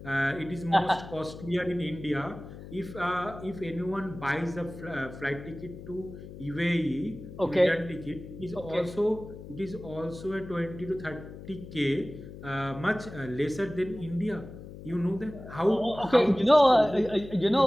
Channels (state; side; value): noise; left; hum, 14 dB below the sound